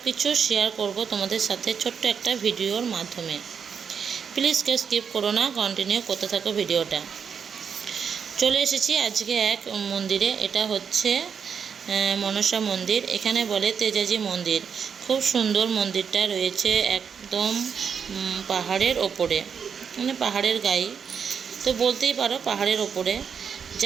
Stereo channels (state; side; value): quieter; left; 6.8 dB